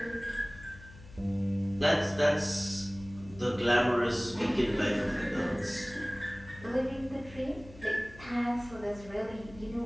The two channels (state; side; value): noise; left; hum, 19 dB below the sound